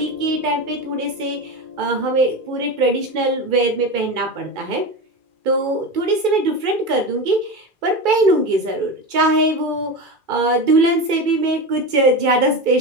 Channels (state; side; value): late; left; 2.4 ms